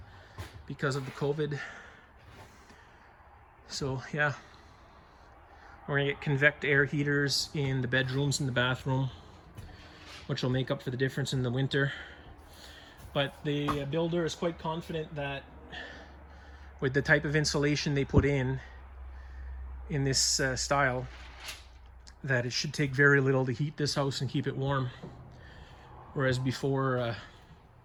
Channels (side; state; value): both; identical; correlation 1.00